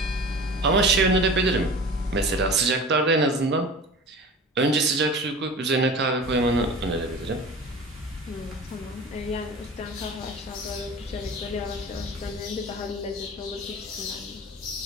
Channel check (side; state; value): both; normal; correlation 0.37